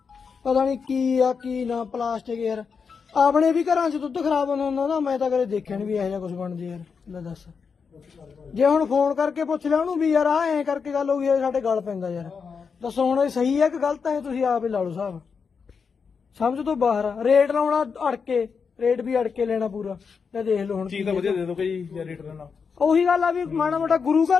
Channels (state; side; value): quieter; right; 5.7 dB